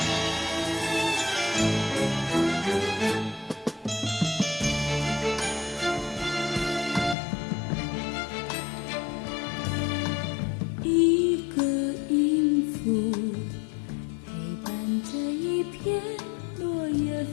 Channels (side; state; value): right; drops out; at 7.2 s